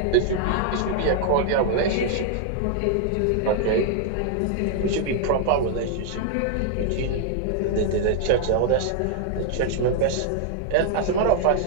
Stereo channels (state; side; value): different; both; correlation 0.00